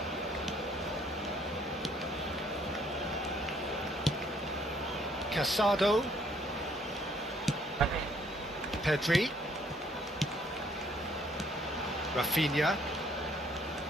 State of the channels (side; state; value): both; normal; correlation 0.64